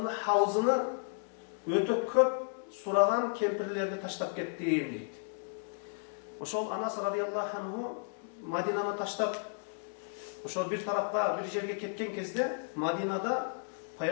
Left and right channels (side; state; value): right; silent; digital silence